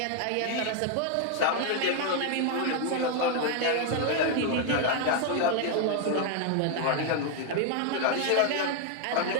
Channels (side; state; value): both; different; correlation 0.00